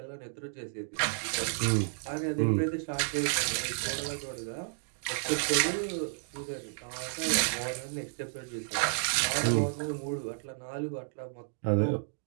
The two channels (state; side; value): silent; left; digital silence